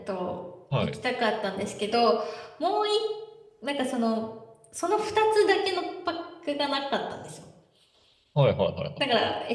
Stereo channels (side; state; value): both; identical; correlation 1.00